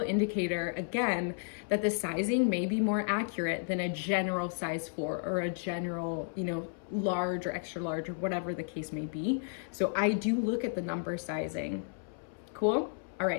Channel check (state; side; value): silent; right; 56 dB below the other